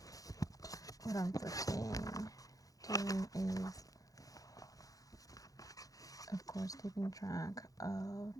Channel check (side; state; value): right; late; 0.17 ms